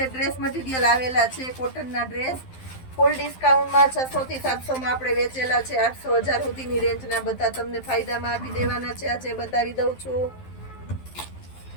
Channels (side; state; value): right; late; 12 ms